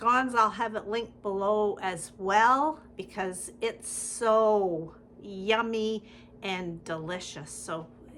I'll have it linked below as well because it's so yummy and delicious. So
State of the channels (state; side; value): identical; both; correlation 1.00